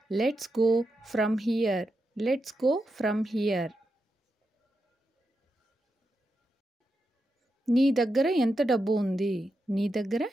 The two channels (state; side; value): normal; both; correlation 0.87